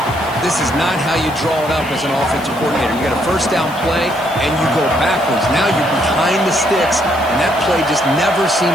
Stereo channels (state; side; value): noise; left; hiss, 20 dB below the sound